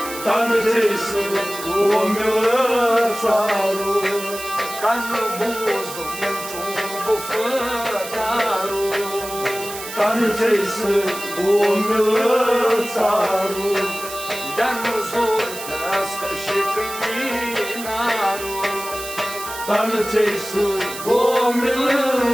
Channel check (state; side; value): noise; right; hiss, 10 dB below the sound